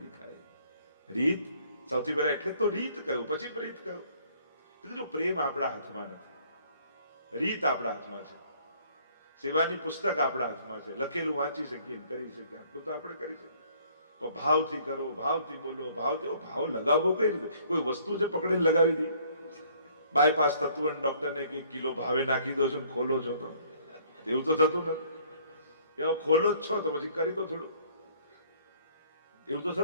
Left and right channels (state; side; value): inverted; both; correlation -0.59